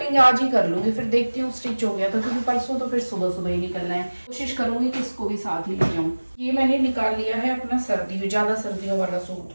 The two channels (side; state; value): both; inverted; correlation -1.00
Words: आज ही कर लूंगी, फिर देखती हूँ स्टिच हो गया तो, क्योंकि परसों तो फिर सुबह सुबह ही निकलना है। कोशिश करूंगी कि इसको भी साथ ही ले जाऊँ। ये मैंने निकाल लिया है अपना ज्यादा सर्दियों वाला सूट,